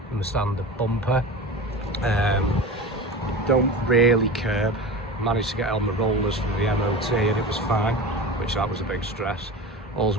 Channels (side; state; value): both; normal; correlation 0.31